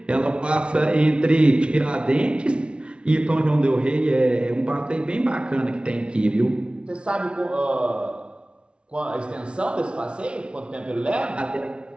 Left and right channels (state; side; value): late; left; 0.058 ms